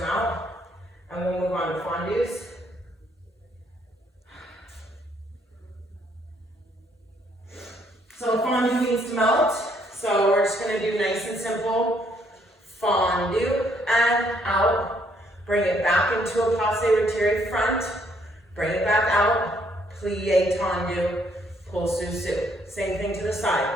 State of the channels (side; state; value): both; normal; correlation 0.69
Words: out. And we'll move on to fondues. So fondue needs to melt. So we're just gonna do nice and simple. Fondue and out. Bring it back into a passe retiré front. Bring it back out. Plie tendu. Pull sous. Same thing to the side.